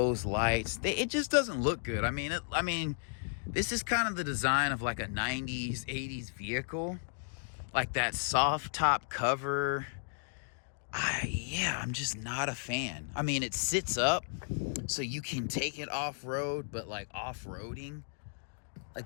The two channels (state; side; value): silent; right; digital silence